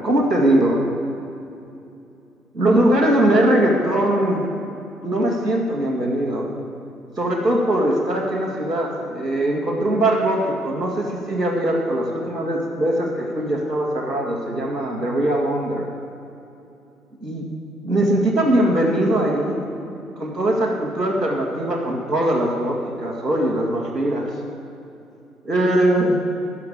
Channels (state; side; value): normal; both; correlation 0.72